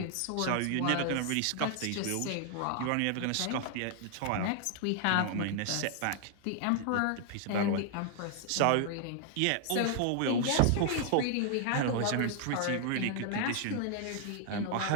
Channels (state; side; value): different; both; correlation 0.00